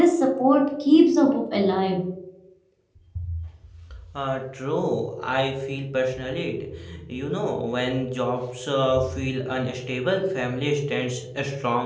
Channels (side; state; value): both; identical; correlation 1.00